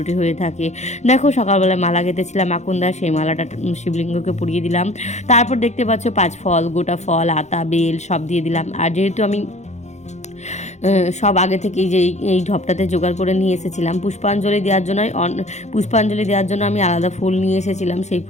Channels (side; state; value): right; late; 0.33 ms